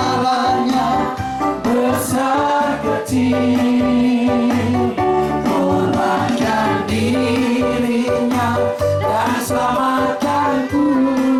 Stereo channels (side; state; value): both; identical; correlation 1.00